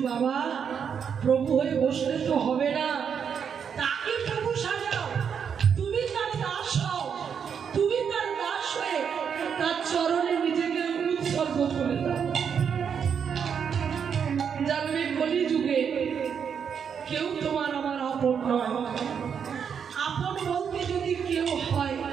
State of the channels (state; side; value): quieter; left; 7.2 dB